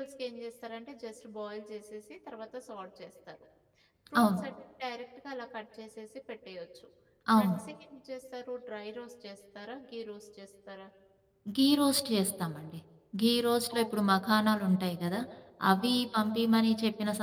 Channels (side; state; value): both; identical; correlation 1.00